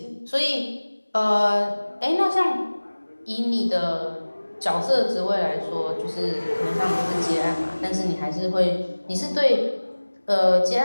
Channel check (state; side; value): inverted; both; correlation -1.00